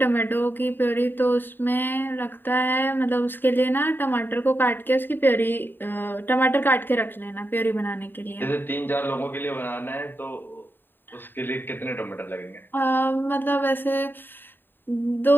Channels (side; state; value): right; late; 0.094 ms